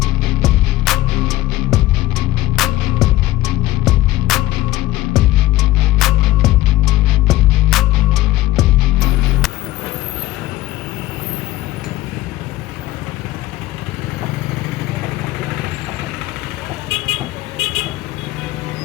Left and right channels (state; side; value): quieter; right; 16.4 dB